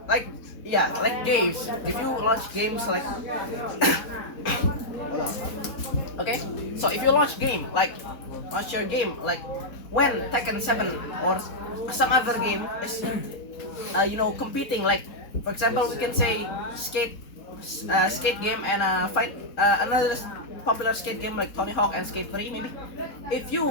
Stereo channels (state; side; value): late; right; 4.1 ms